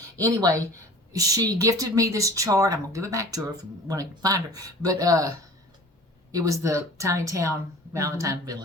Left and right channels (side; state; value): both; normal; correlation 0.43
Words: Anyway, she gifted me this chart. I'm going to give it back to her when I find her. But it was the Tiny Town Valentine